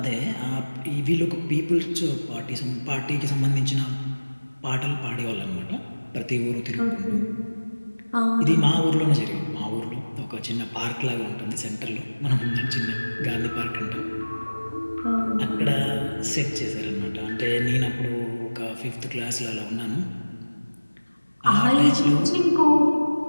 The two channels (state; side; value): inverted; both; correlation -1.00